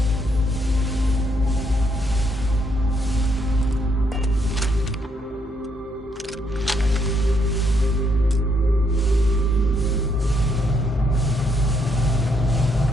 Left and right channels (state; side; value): normal; both; correlation 0.74